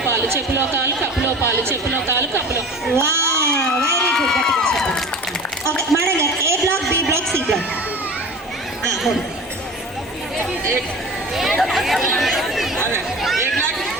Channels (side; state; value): both; normal; correlation 0.37